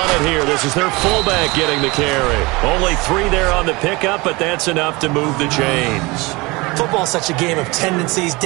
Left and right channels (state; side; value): quieter; left; 24.0 dB